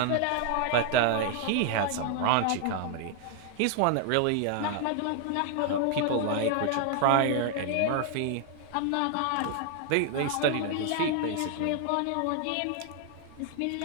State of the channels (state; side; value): different; both; correlation 0.00